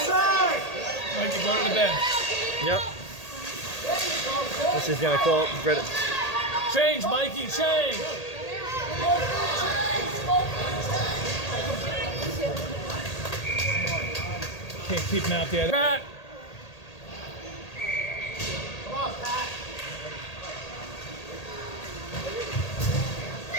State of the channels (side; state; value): right; late; 1.8 ms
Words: Mike, you go to the bench. Yep. This is gonna call Brett. Change, Mikey, change. Can't keep him out there. Pat.